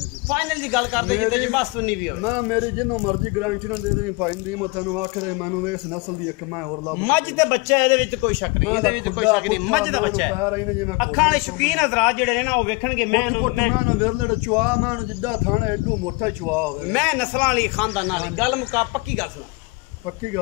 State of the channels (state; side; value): quieter; right; 26.3 dB